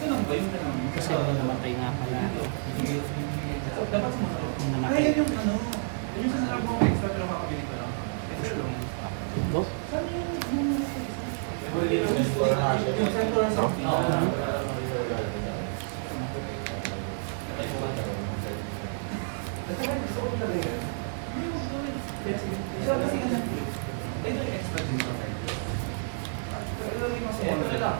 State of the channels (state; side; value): silent; left; digital silence